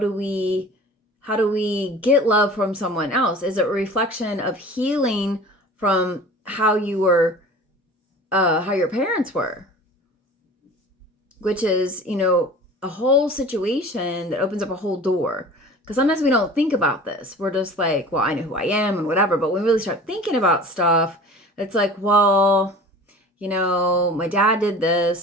we get love from someone else? Is it a reflection of healing from how you were, how your parents were? Which is, a whole situation that opens up a whole door. Because sometimes we don't think about this. We're just like, well, I know who I am and whatever. But when we really start thinking about stuff, it's like, well, my dad did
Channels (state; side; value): normal; both; correlation 0.41